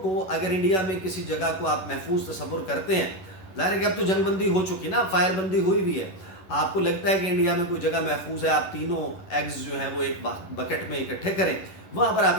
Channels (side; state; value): right; late; 11 ms